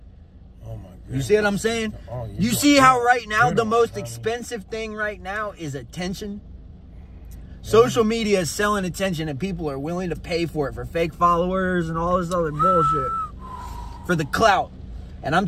Oh my God. You see what I'm saying? You see how right now the most expensive thing right now is attention? Social media is selling attention, and people are willing to pay for it, for fake followers and all this other bullshit, for the clout. And I'm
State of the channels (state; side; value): identical; both; correlation 1.00